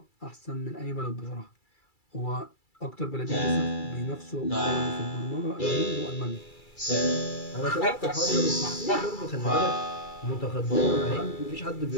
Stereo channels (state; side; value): late; right; 2.3 ms